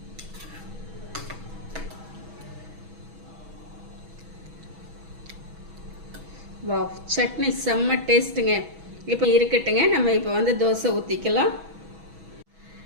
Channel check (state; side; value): late; left; 6.2 ms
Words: வாவ், சட்னி செம்ம டேஸ்ட்டுங்க. இப்போ இருக்கட்டுங்க. நம்ம இப்போ வந்து தோசை ஊற்றிக்கலாம்.